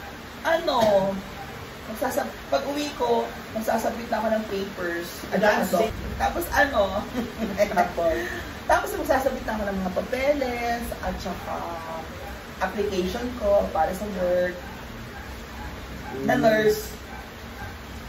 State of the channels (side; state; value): both; identical; correlation 1.00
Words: Pag uwi ko, magsasabit na ako ng papers. Tapos magsasabit na ako ng mga papeles at saka application ko para sa work na nurse.